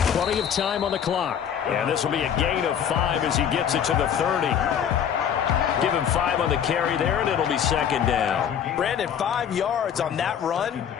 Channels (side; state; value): right; quieter; 8.6 dB